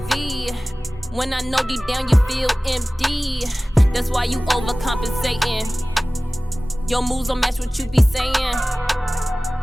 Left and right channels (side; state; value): both; normal; correlation 0.98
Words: When I know deep down you feel empty. That's why you overcompensating. Your moves don't match what you be saying.